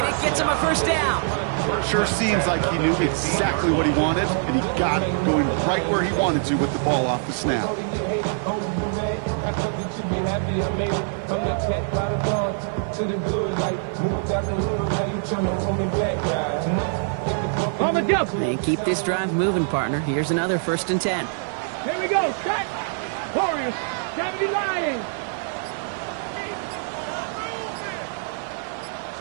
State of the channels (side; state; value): left; silent; 63 dB below the other